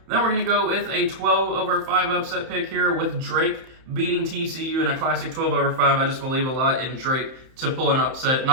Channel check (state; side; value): late; left; 31 ms